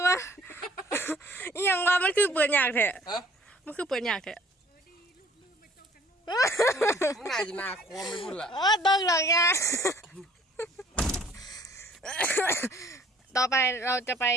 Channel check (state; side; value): normal; both; correlation 0.56